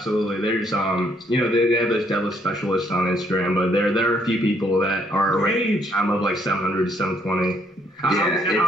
There's you know, they have those deadlift specialists on Instagram, but there are a few people that are I'm of like 700 to 720.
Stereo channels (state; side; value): normal; both; correlation 0.69